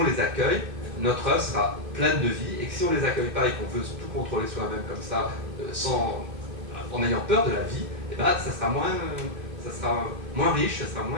les accueille, notre œuvre sera pleine de vie, et que si on ne les accueille pas et qu'on veut tout contrôler soi-même comme ça, en ayant peur de la vie, eh ben, ça sera moins riche, ça sera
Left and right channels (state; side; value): late; left; 2.6 ms